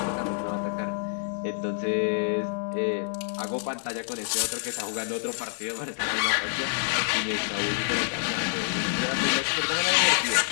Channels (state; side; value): silent; right; 60 dB below the other